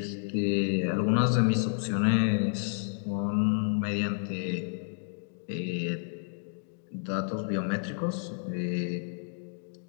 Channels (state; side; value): silent; right; digital silence